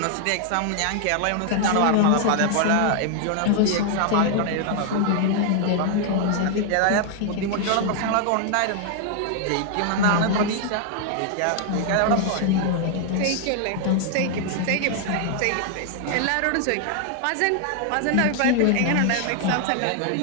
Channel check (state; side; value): different; both; correlation 0.00